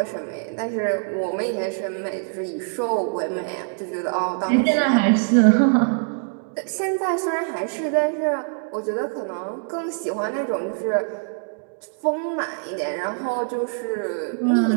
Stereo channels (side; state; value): left; silent; 63 dB below the other